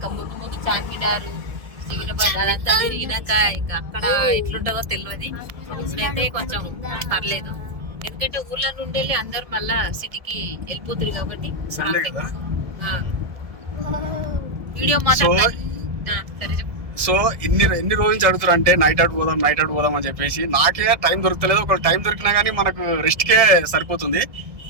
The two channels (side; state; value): left; late; 1.7 ms